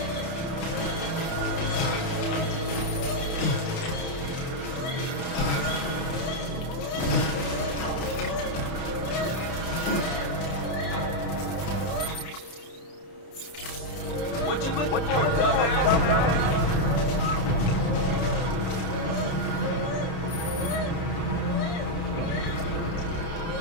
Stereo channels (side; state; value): right; late; 30 ms